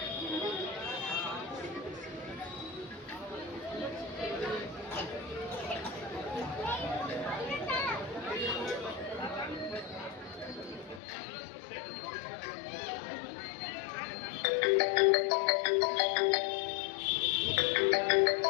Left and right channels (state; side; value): drops out; right; at 11.0 s